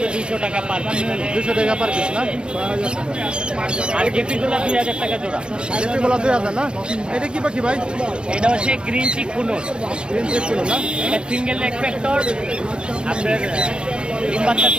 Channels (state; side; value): late; left; 0.052 ms